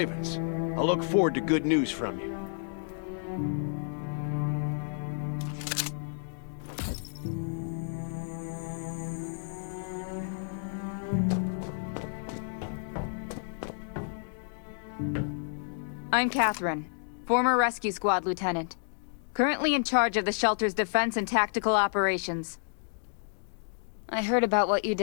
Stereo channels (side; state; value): right; silent; digital silence